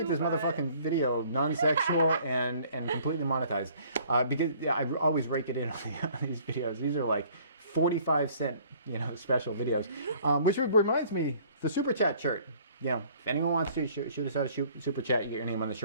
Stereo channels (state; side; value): inverted; both; correlation -0.56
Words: this motherfucking video non-sexual and completely monetized. Because I always rake it in on these videos. These are like 45-cent, special videos. Which reminds me, the Super Chat shirt. If anyone wants to shoot us out a super chat, you get your name on the